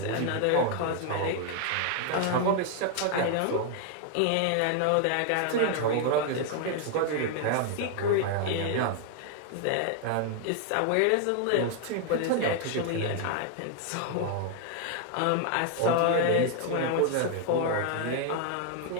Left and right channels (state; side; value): different; both; correlation 0.00